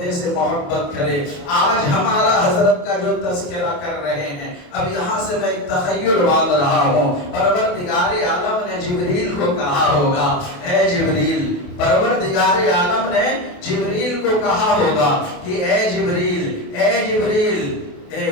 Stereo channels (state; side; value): late; right; 28 ms